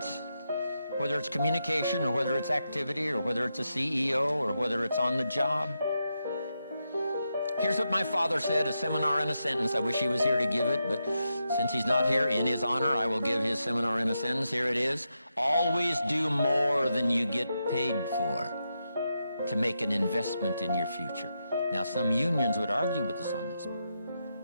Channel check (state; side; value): inverted; both; correlation -0.85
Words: whether it's communication or whether it's activity or whether it's a CEO or whether it's on the job. Here's what my father said, a seminar in a sentence. I wish he was here to give it, but since he's not here, in his honor, I will give his seminar in a sentence. Here it is. Always do more than you get paid for to make an investment in your future. Now, some unions would argue with us on this.